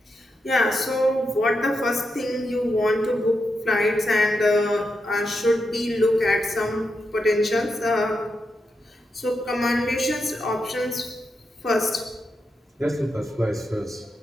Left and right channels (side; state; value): both; normal; correlation 0.86